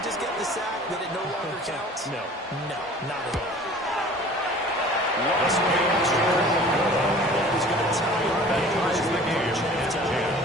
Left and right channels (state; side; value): normal; both; correlation 0.46